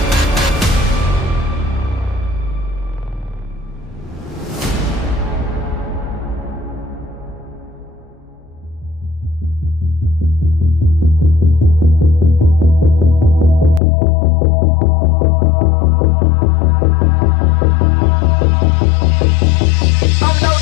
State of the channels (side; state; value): right; drops out; at 13.8 s